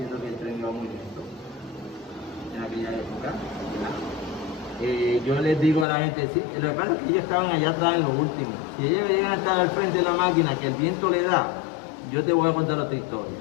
que el tren iba muy lento en aquella época. Yo les digo a la gente, sí, lo que pasa es que ellos estaban allá atrás en lo último. Si ellos llegan a estar al frente de la máquina, que el viento le da, yo te voy a contar otra historia,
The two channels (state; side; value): drops out; right; at 5.9 s